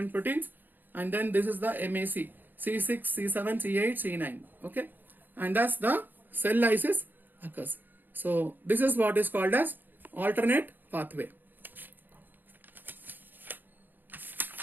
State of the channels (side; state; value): left; late; 0.090 ms